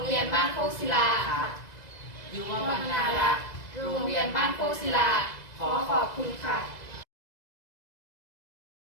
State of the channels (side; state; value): right; late; 2.0 ms